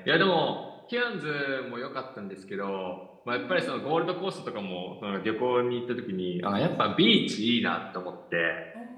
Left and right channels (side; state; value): both; identical; correlation 1.00